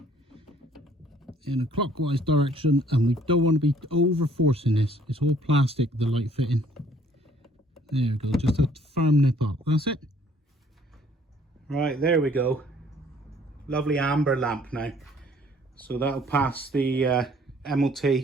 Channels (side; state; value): both; normal; correlation 0.60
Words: in a clockwise direction, and we don't want to be over forcing this. It's all plastic, the light fitting. There we go, just a firm nip up. That's it. Right, there we go. Lovely amber lamp now. So that'll pass the MOT